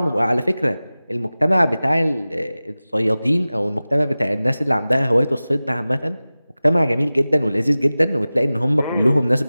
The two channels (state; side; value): inverted; both; correlation -0.97